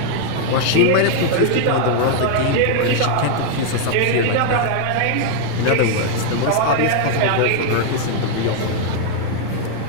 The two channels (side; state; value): both; different; correlation 0.00